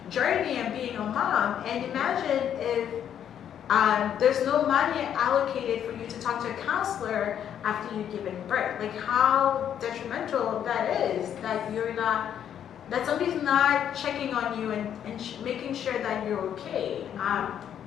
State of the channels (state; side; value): quieter; right; 9.4 dB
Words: journey and being a mom. And imagine if there's no money allocated for you to talk to a counselor after you've given birth. How detrimental that is, that somebody's not checking on you and making sure that you're okay.